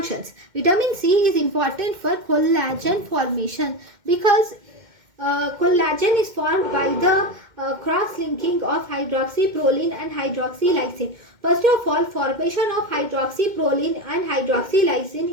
Vitamin C is important for collagen formation because collagen is formed by the cross-linking of hydroxyproline and hydroxylysine. First of all, formation of hydroxyproline and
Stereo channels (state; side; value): late; left; 2.1 ms